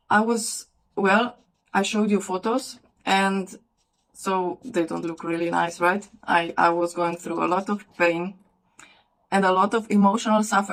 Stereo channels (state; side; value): identical; both; correlation 1.00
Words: I showed you photos, and so they don't look really nice, right? I was going through a lot of pain and a lot of emotional